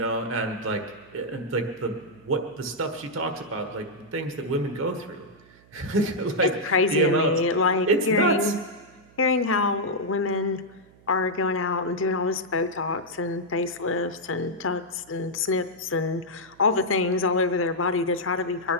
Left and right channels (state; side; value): noise; right; hum, 27 dB below the sound